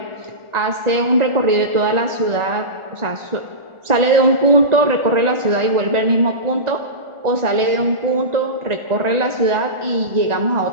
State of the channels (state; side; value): late; left; 1.4 ms